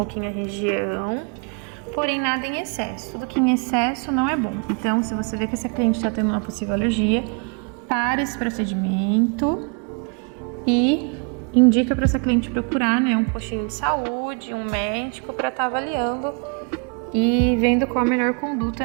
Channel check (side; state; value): left; quieter; 36.8 dB